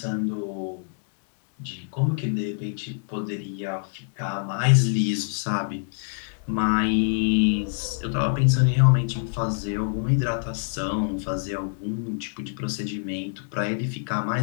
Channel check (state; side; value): silent; right; digital silence